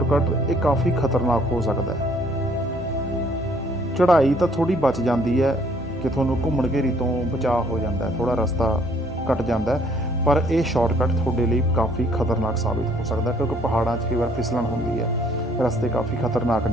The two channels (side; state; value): both; normal; correlation 0.62